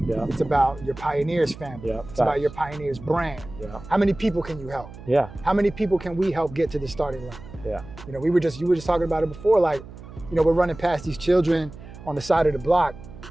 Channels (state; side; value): noise; right; hum, 16 dB below the sound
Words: Yeah. It's about your Pioneers family. Yeah. It's about your Pioneers brand. Yeah. How many people can you help? Yeah. How many people can we help get to the starting line? Yeah. You were just talking about it before, like, we're running past these children on the side of the block,